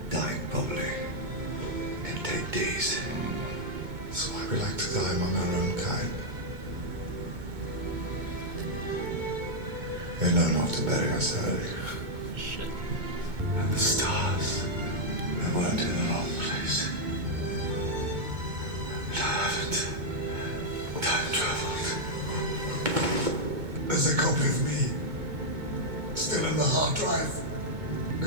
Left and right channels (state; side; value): late; left; 2.2 ms